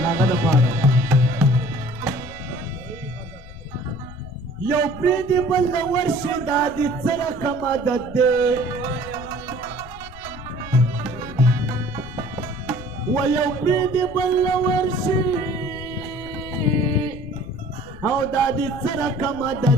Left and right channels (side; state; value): left; noise; rumble, 16 dB below the sound